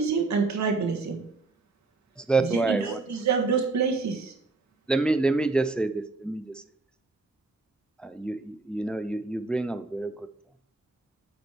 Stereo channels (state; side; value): quieter; left; 3.6 dB